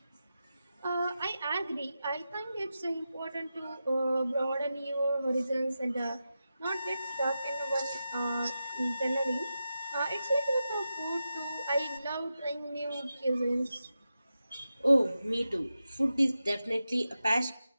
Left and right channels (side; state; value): both; inverted; correlation -0.90